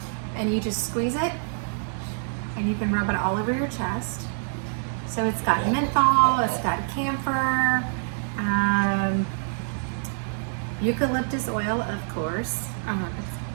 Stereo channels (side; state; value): left; silent; digital silence